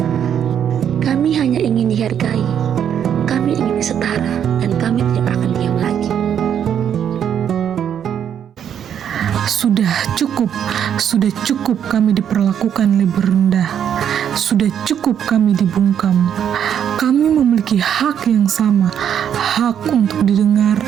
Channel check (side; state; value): left; quieter; 8.9 dB